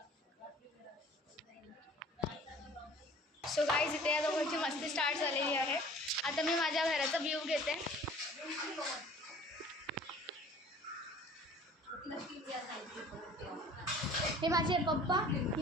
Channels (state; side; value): normal; both; correlation 0.48